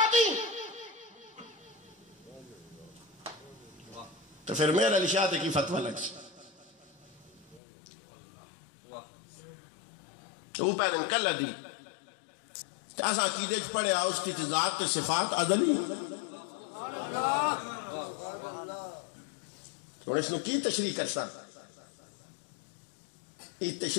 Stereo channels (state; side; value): drops out; right; at 7.6 s